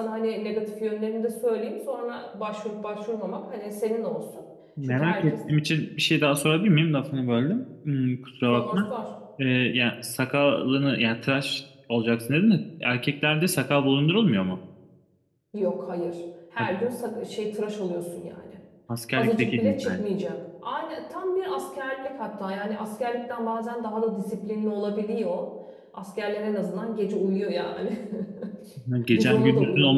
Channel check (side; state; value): both; identical; correlation 1.00